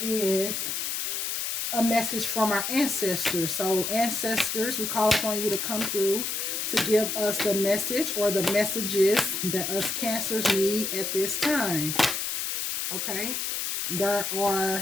is a message from our ancestors. So ancestors, we call upon you to come through to give us the message or the messages that us cancers need at this time. Okay, there are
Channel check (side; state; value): left; noise; hiss, 2 dB below the sound